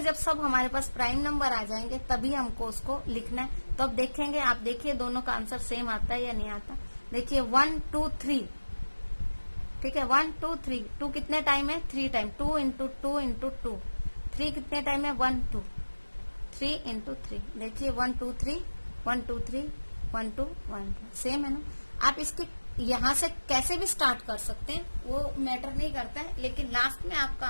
जब सब हमारे पास प्राइम नंबर आ जाएंगे तभी हमको उसको लिखना है। तो अब देखेंगे, आप देखिए दोनों का आंसर सेम आता है या नहीं आता। देखिए 1 2 3, ठीक है, 1 2 3। 2 कितने टाइम है, 3 टाइम। 2 into 2 into 2। 3 कितने टाइम है, 1 2, 3 इंटू 3। देखिए 1 2 3 1 2 3 1 2 1 2, सेम है ना। आप इसकी यहाँ से कैसे भी स्टार्ट कर सकते हैं, वो मैटर नहीं करता है, लेकिन लास्ट में आपका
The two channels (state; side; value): inverted; both; correlation -1.00